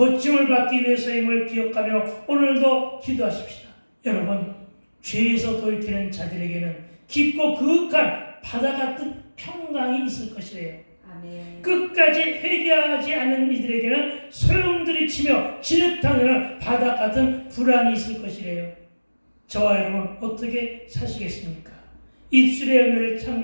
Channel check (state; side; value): inverted; both; correlation -1.00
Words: 받기 위해서임을 기억하며 오늘도 기도하십시다. 여러분, 죄에서 돌이키는 자들에게는 깊고 그윽한 바다 같은 평강이 있을 것이래요. 아멘. 끝까지 회개하지 않은 이들에게는 소용돌이치며 진흙탕에는 바다 같은 불안이 있을 것이래요. 저와 여러분 어떻게 사시겠습니까? 입술의 열매를